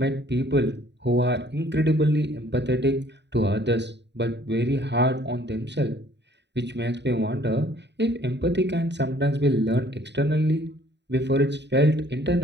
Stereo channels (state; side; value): late; left; 0.50 ms